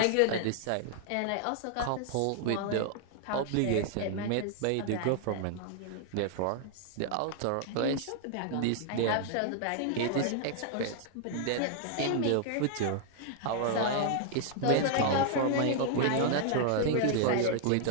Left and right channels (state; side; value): different; both; correlation -0.01